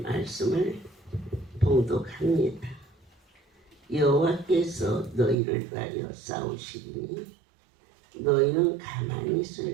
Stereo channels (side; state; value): left; drops out; at 5.4 s